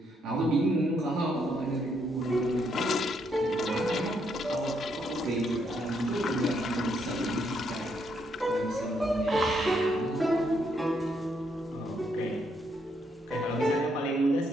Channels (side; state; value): both; normal; correlation 0.75